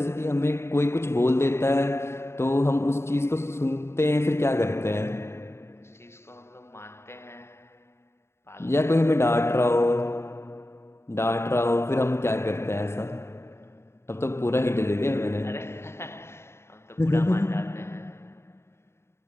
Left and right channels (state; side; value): late; right; 0.13 ms